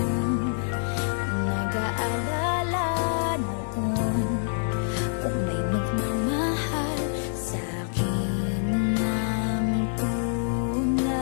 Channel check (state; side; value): silent; right; 61 dB below the other